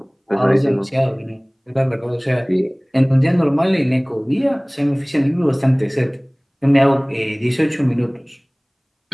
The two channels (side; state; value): both; identical; correlation 1.00